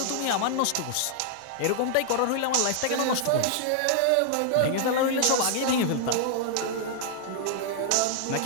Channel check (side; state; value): both; different; correlation -0.01